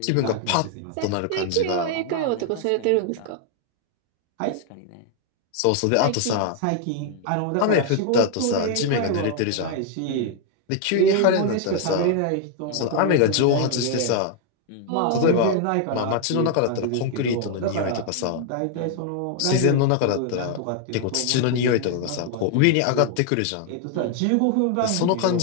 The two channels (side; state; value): both; different; correlation 0.00